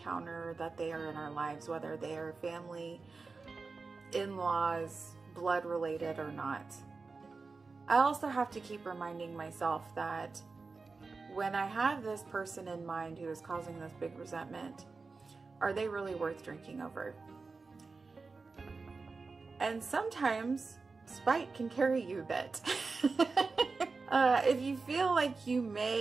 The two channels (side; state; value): left; quieter; 4.2 dB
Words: that they are in our lives, whether they are family, in-laws, blood related or not. I also have to keep reminding myself that when I have this person in mind who is causing this big resentment, are they really worth drinking over? And sometimes spite can carry you a bit. If you feel like you